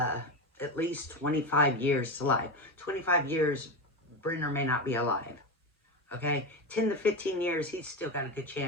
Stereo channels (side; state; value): both; normal; correlation 0.17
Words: 25 years to life. 25 years, Brenner may not be alive. Okay, 10 to 15 years, he's still got a good